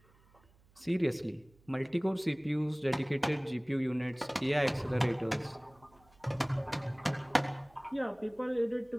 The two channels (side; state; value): right; noise; hum, 30 dB below the sound